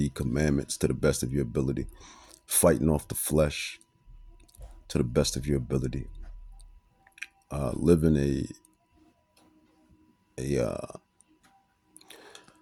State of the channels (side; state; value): both; identical; correlation 1.00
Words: commandments to the best of your ability, fighting off the flesh to the best of your ability, living